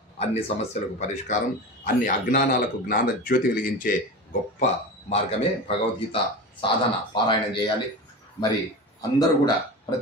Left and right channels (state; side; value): normal; both; correlation 0.28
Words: అన్ని సమస్యలకు పరిష్కారం, అన్ని అజ్ఞానాలకు జ్ఞాన జ్యోతి వెలిగించే గొప్ప మార్గమే భగవద్గీత సాధన. పారాయణం చేయాలి. మరి అందరూ కూడా